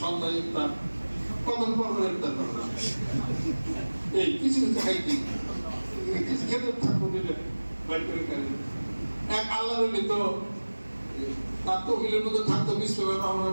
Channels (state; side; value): inverted; both; correlation -1.00